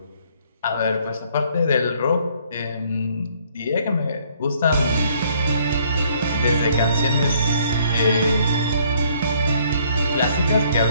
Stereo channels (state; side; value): inverted; both; correlation -0.63